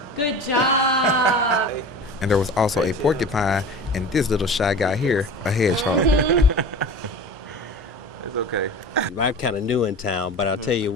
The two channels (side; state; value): both; normal; correlation 0.35